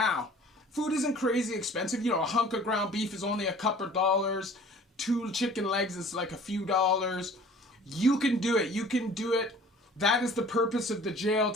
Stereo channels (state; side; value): normal; both; correlation 0.49